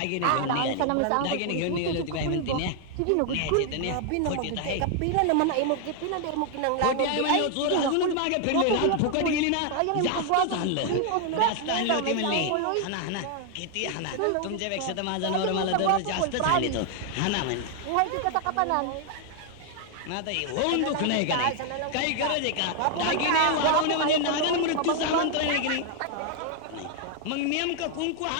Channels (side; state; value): both; different; correlation 0.00